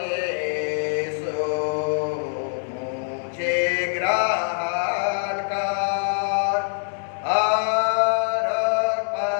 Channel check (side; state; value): right; silent; digital silence